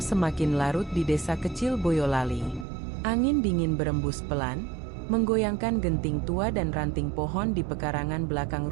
larut di desa kecil Boyolali. Angin dingin berembus pelan, menggoyangkan genting tua dan ranting pohon di pekarangan belakang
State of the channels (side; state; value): left; drops out; at 2.7 s